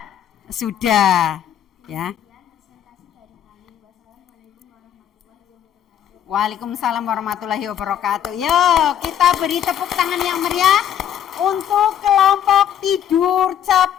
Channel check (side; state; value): right; quieter; 9.9 dB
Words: Sudah, ya. Waalaikumsalam warahmatullahi wabarakatuh. Yo, kita beri tepuk tangan yang meriah untuk kelompok tidur